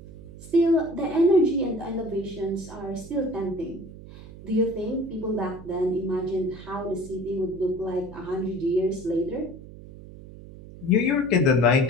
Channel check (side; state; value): right; noise; hum, 16 dB below the sound